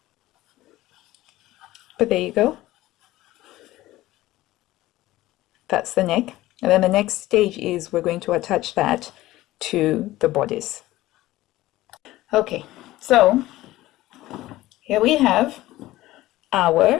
there you go. That's the neck. And then the next stage is we're going to attach that to the bodice. Okay, so here we have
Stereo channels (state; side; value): quieter; right; 16.7 dB